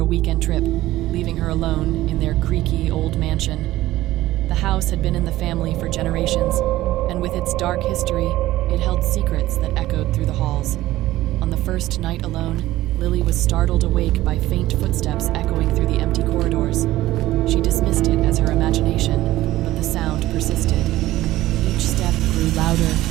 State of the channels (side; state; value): left; quieter; 15.9 dB